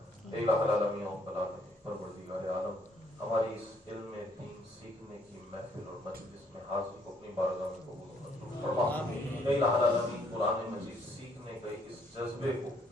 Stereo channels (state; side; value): normal; both; correlation 0.67